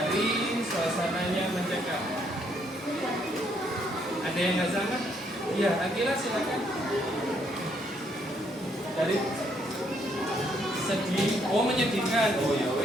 suasananya mencekam. Ada yang nggak sama? Iya, Akila silakan. Dari sedih, oh menyedihkan. Oh ya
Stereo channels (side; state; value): both; normal; correlation 0.71